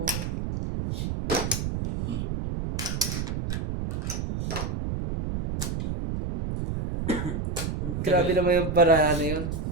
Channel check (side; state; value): right; noise; rumble, 3 dB below the sound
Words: Grabe naman yung paraan na yun.